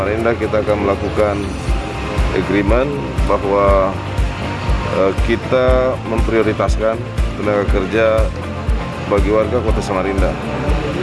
kita akan melakukan agreement bahwa kita memprioritaskan tenaga kerja bagi warga Kota Samarinda.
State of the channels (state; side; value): identical; both; correlation 1.00